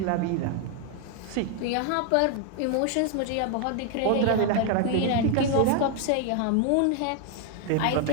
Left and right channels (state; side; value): different; both; correlation 0.00